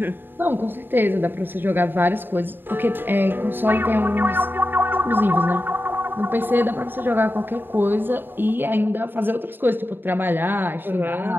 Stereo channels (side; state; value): left; late; 0.096 ms